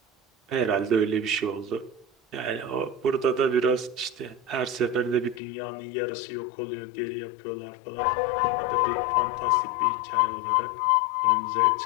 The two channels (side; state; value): right; drops out; at 5.4 s